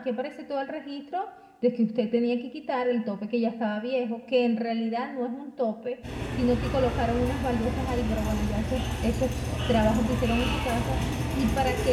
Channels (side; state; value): both; identical; correlation 1.00